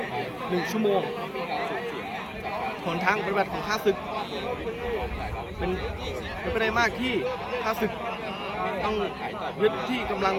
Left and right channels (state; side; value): identical; both; correlation 1.00